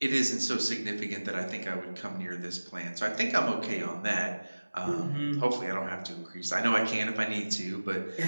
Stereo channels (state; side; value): inverted; both; correlation -1.00